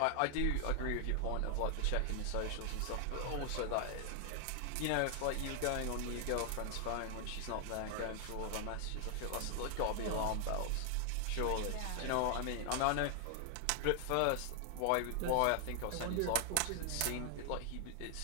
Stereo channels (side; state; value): both; different; correlation 0.00